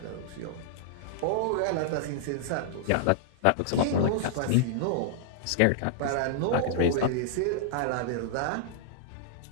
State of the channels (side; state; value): both; different; correlation -0.01